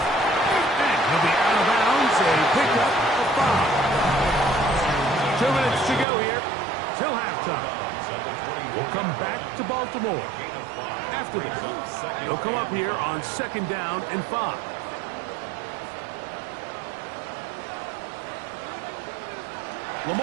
he'll be out of bounds, a pickup of 5. 2 minutes to go here till halftime. We'll come back to Baltimore. After this, they'll come up here on 2nd down and 5.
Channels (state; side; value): drops out; left; at 6.1 s